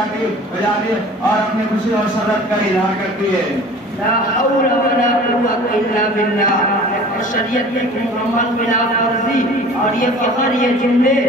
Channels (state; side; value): normal; both; correlation 0.43